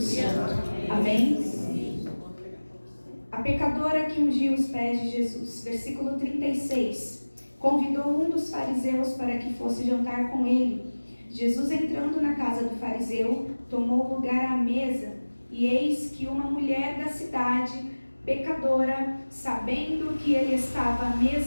Amém? A pecadora que ungiu os pés de Jesus. Versículo 36. Convidou um dos fariseus para que fosse jantar com ele. Jesus, entrando na casa do fariseu, tomou lugar à mesa. E eis que uma mulher da cidade, pecadora, sabendo que ele estava à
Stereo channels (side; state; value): both; inverted; correlation -1.00